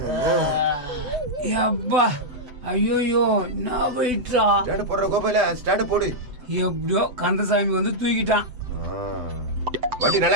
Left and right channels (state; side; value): late; left; 8.1 ms